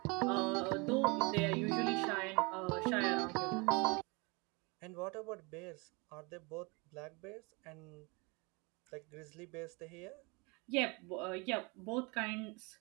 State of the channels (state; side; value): quieter; left; 28.6 dB